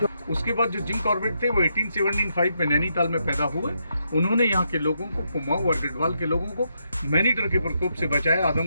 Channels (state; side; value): inverted; both; correlation -0.80